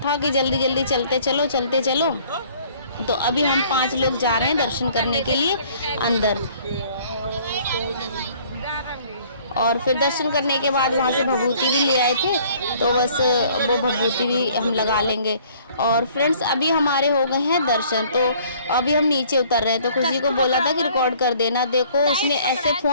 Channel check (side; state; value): both; inverted; correlation -0.57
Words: था कि जल्दी चलते चलो। तो अभी हम 5 लोग जा रहे हैं दर्शन करने के लिए अंदर। और फिर दर्शन करने के बाद वहाँ से भभूति भी ले आए थे, तो बस वो भभूति भी हम लगा लेंगे। और फ्रेंड्स अभी हमारे हो गए हैं दर्शन, तो अभी हम नीचे उतर रहे हैं। तो खुशी को बोला था कि रिकॉर्ड कर देना, देखो उसने ऐसे